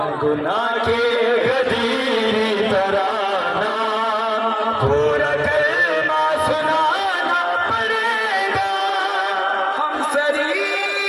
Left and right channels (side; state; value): both; identical; correlation 1.00